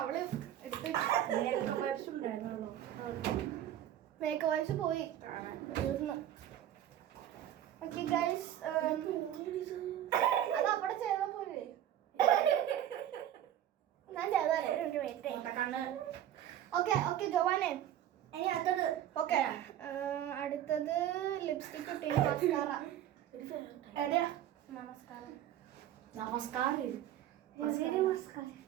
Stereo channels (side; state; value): left; quieter; 11.5 dB